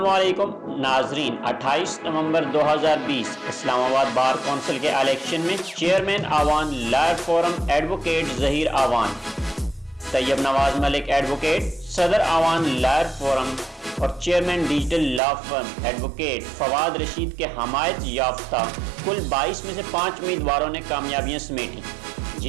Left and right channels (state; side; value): drops out; left; at 15.2 s